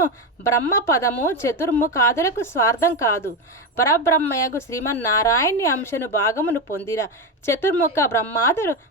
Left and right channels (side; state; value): both; normal; correlation 0.14